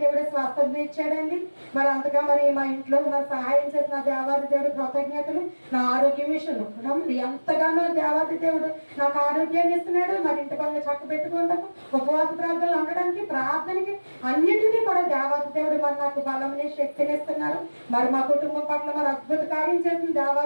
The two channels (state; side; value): inverted; both; correlation -1.00